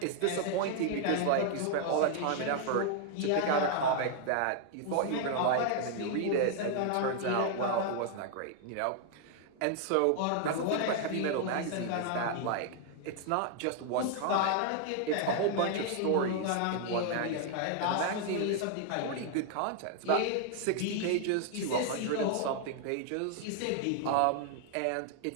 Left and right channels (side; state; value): both; different; correlation 0.00